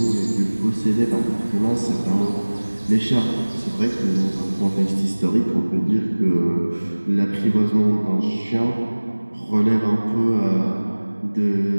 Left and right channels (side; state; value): both; inverted; correlation -1.00